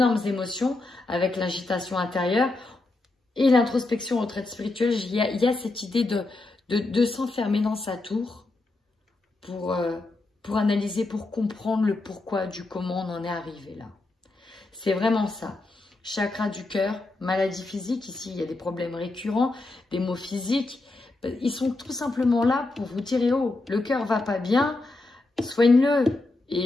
émotions avec l'agitation intérieure et l'introspection, retraite spirituelle. Il y a cette idée de s'enfermer dans sa tour pour analyser, pour comprendre le pourquoi du comment on en est arrivé là. C'est vraiment ça. Chakra du cœur, maladie physique, ici il y a des problèmes récurrents, des maux physiques. Ils sont tout simplement là pour vous dire, oh, le cœur va pas bien, soigne-le.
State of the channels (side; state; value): right; quieter; 3.1 dB